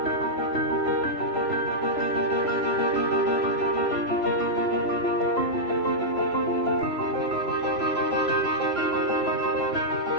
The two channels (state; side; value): late; right; 3.0 ms